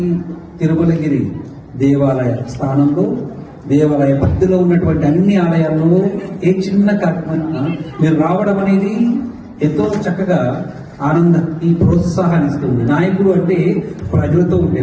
తిరుమలగిరి దేవాలయ స్థానంలో, దేవాలయ పరిధిలో ఉన్నటువంటి అన్ని ఆలయాల్లో ఏ చిన్న కార్యక్రమం మీరు రావడం అనేది ఎంతో చక్కగా ఆనందాన్ని ప్రోత్సాహాన్ని ఇస్తుంది. నాయకుడు అంటే ప్రజలతో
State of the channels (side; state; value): both; identical; correlation 1.00